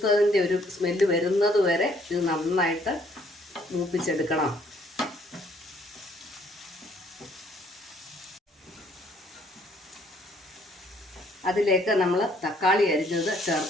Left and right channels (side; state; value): both; normal; correlation 0.64